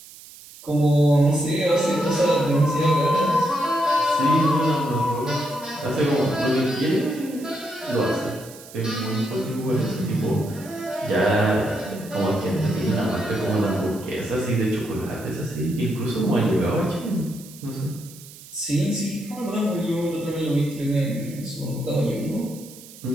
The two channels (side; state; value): right; noise; hiss, 19 dB below the sound